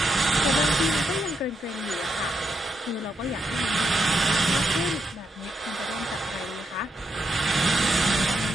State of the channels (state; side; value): normal; both; correlation 0.80